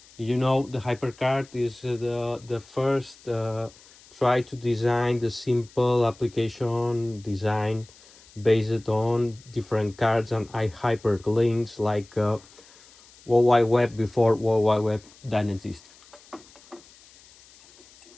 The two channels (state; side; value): noise; left; hiss, 25 dB below the sound